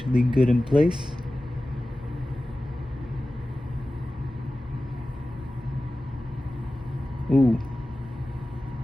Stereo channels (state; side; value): normal; both; correlation 0.96